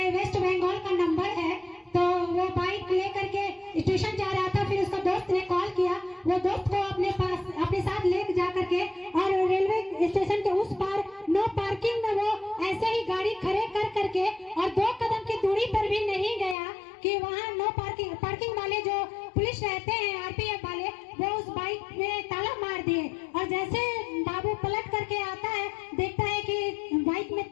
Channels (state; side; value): drops out; right; at 16.6 s